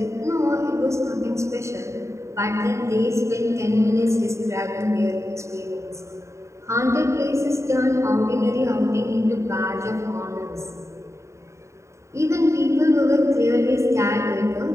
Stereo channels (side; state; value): left; late; 0.14 ms